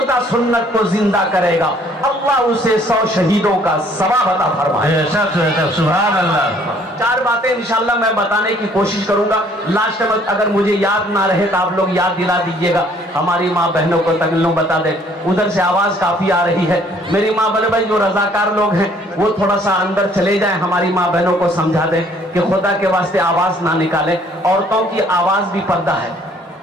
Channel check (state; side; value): normal; both; correlation 0.60